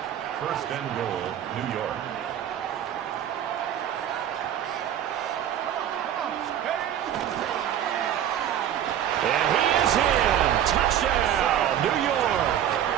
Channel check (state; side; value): quieter; left; 10.4 dB